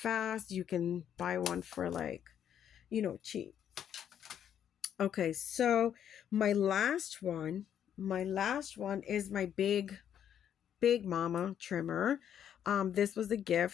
you can buy one for like, cheap. Okay, so my last one is my big mama trimmer. This was a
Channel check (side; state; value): right; quieter; 9.4 dB